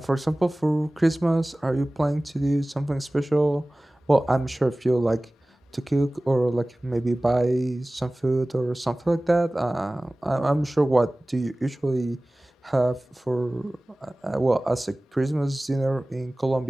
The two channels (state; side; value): normal; both; correlation 0.98